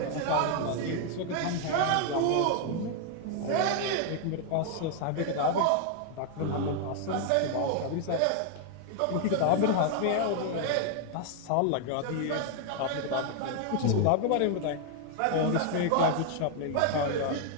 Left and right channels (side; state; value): both; different; correlation 0.00